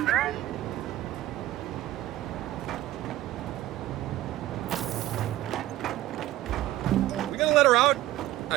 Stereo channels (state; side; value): quieter; left; 15.2 dB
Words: We gonna let her out?